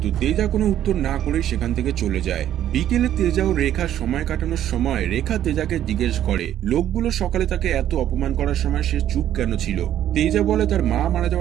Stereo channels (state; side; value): quieter; left; 11.4 dB